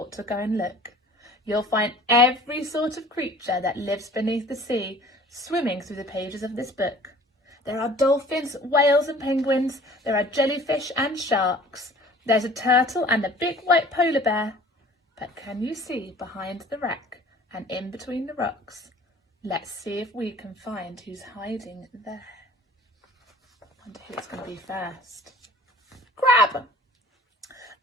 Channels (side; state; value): both; normal; correlation 0.48